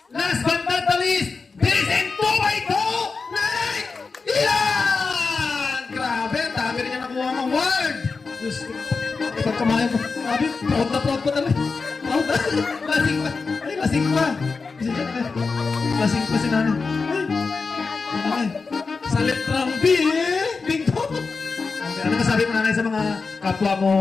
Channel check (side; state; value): right; quieter; 4.5 dB